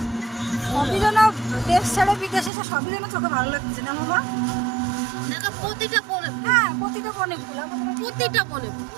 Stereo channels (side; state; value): left; drops out; at 2.5 s